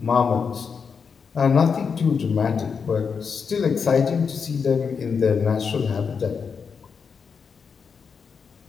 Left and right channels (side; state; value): right; quieter; 5.9 dB